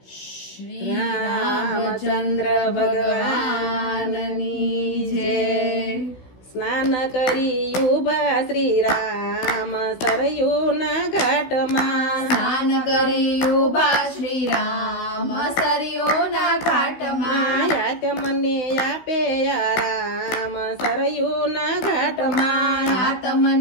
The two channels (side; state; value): right; late; 16 ms